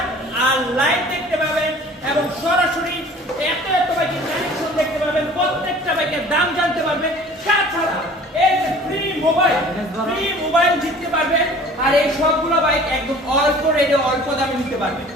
আর লাইভ দেখতে পাবেন এবং সরাসরি এত বাইকের কালেকশন দেখতে পাবেন, প্রত্যেকটা বাইকের দাম জানতে পারবেন। তাছাড়া এই যে ফ্রি মোবাইল জিততে পারবেন আর এই সবগুলো বাইক একদম অল্প রেটে অল্প দামে নিতে পারবেন।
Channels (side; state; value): both; normal; correlation 0.47